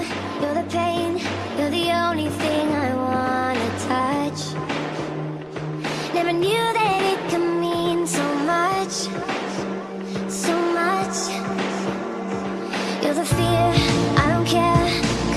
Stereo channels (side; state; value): both; identical; correlation 1.00